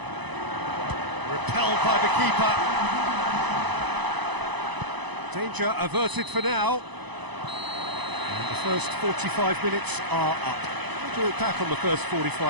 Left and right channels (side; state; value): left; late; 1.0 ms